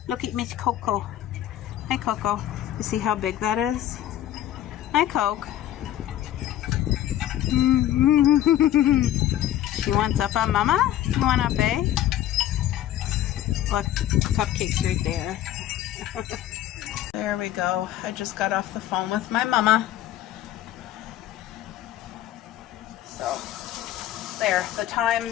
Look at Miss Coco. Hi, Coco. You see how big that is? Hi, Coke. She wants up on mama? You want up, eh? Look, cupcakes right there. There we go. I just got off the phone with my mama. So, there. The time,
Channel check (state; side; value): quieter; right; 12.5 dB